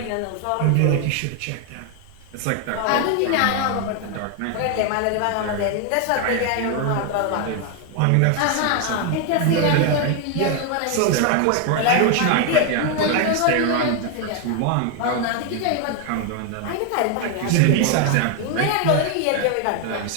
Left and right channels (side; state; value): both; different; correlation 0.01